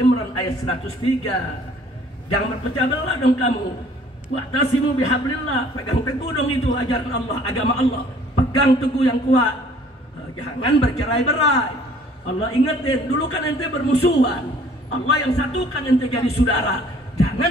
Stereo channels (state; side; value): normal; both; correlation 0.56